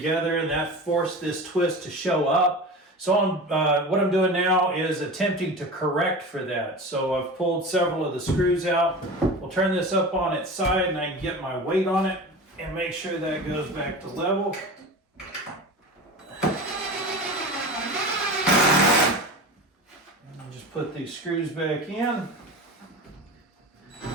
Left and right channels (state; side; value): normal; both; correlation 0.31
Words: and that forced this twist to show up. So what I'm doing now is attempting to correct for that. So I've pulled several of the screws out. We'll turn this up on its side, and I can get my weight on it and make sure that goes back to level. Just put these screws back in.